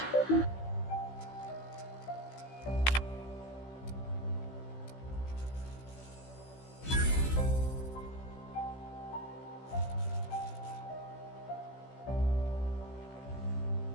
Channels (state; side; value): late; right; 16 ms